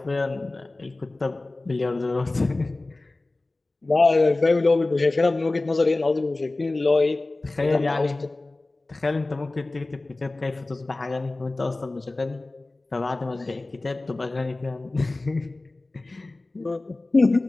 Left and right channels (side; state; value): right; quieter; 3.0 dB